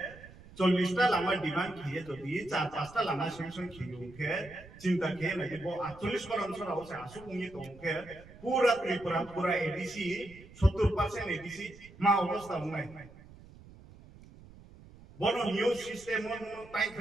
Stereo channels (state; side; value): noise; right; rumble, 20 dB below the sound